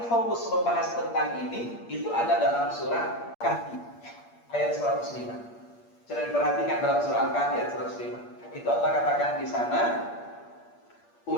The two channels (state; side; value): late; right; 8.5 ms